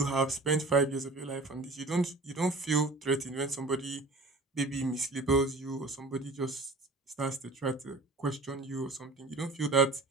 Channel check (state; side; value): quieter; left; 3.1 dB